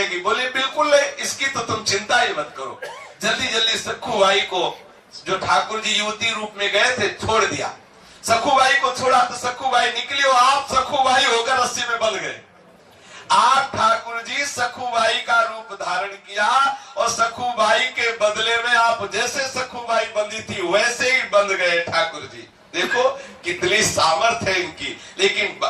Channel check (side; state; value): both; identical; correlation 1.00